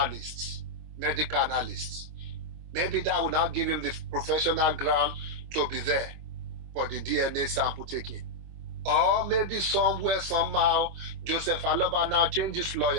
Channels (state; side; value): late; left; 25 ms